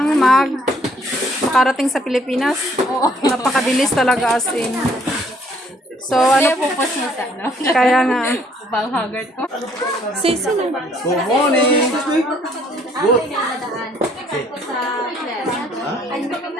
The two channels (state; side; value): normal; both; correlation 0.63